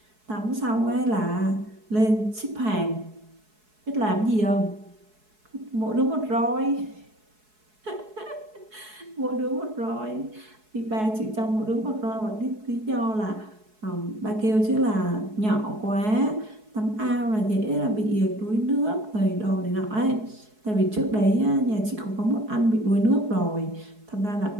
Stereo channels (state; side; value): late; left; 4.7 ms